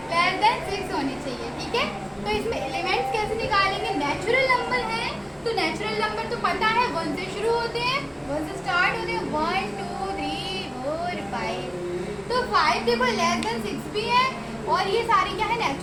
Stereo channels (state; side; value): identical; both; correlation 1.00